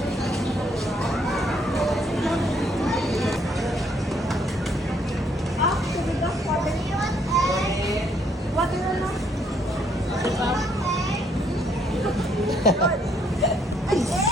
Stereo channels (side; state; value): both; normal; correlation 0.69